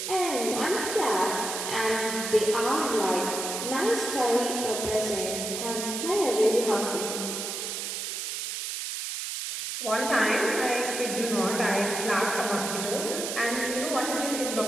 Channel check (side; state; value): right; noise; hiss, 4 dB below the sound